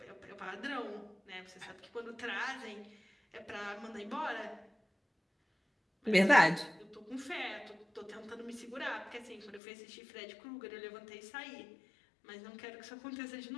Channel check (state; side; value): drops out; right; at 9.6 s